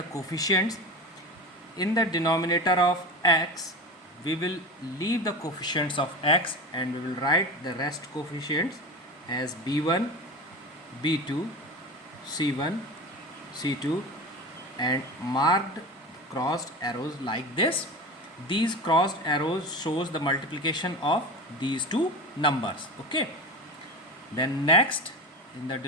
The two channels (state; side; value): normal; both; correlation 0.28